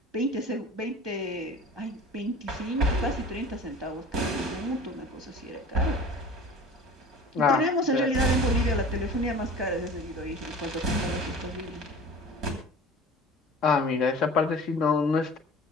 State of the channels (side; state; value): both; normal; correlation 0.41